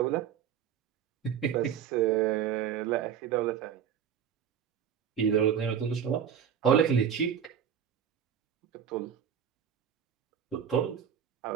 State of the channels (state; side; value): quieter; left; 8.5 dB